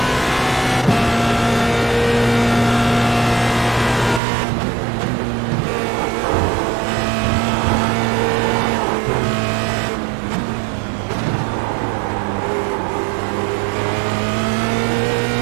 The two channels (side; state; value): left; drops out; at 4.2 s